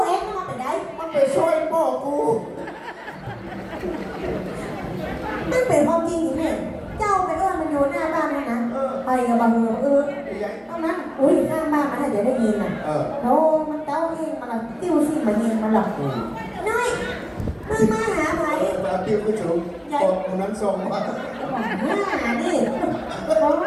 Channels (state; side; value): identical; both; correlation 1.00